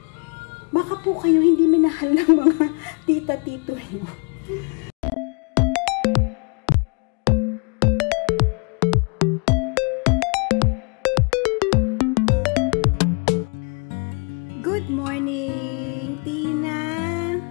Baka po kayo hindi minahal ng mga tita-tito mo. Good morning, Tina.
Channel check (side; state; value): right; quieter; 35.9 dB